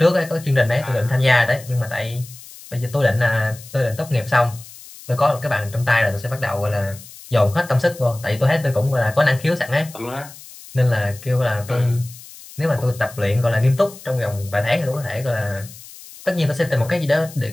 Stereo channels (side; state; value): left; noise; hiss, 18 dB below the sound